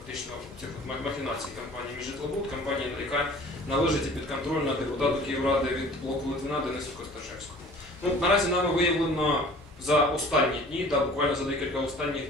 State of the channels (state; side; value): normal; both; correlation 0.47